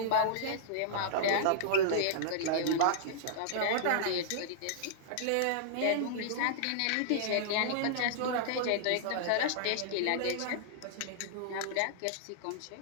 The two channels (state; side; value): different; both; correlation -0.02